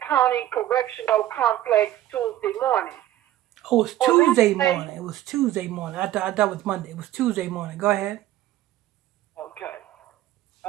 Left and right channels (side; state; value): left; quieter; 13.7 dB